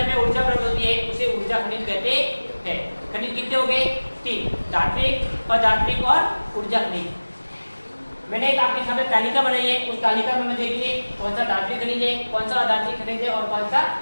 ऊर्जा प्राप्त होती है उसे ऊर्जा खनिज कहते हैं। खनिज कितने हो गए? 3। धात्विक, अधात्विक और ऊर्जा खनिज। मैंने एक आपके सामने तालिका बनाई है, उस तालिका में देखिए कौन सा धात्विक खनिज है, कौन सा अधात्विक खनिज है और कौन सा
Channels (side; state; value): both; inverted; correlation -1.00